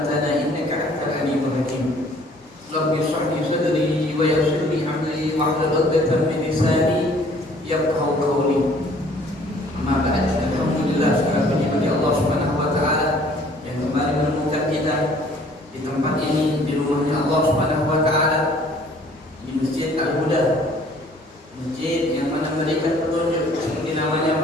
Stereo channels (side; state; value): both; normal; correlation 0.56